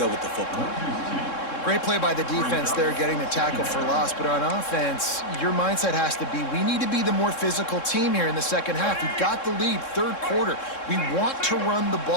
with the football. Great play by the defense there, getting the tackle for loss. But on offense, your mindset has to be, we need to be the more physical team here in the second half. We've got the lead, 3rd quarter. We want to run the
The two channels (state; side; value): late; right; 3.7 ms